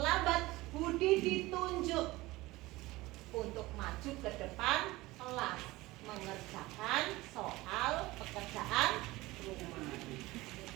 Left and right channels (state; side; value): quieter; left; 19.6 dB